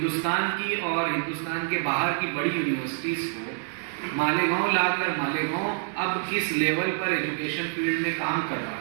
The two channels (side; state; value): left; silent; 60 dB below the other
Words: की और हिंदुस्तान के बाहर की बड़ी यूनिवर्सिटीज़ को मालेगांव लाकर मालेगांव अब किस लेवल पर एजुकेशन फील्ड में काम कर रहा